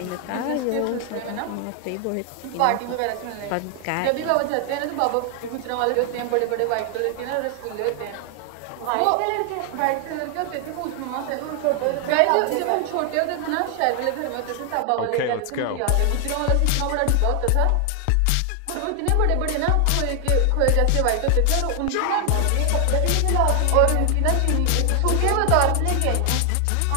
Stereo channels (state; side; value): different; both; correlation 0.00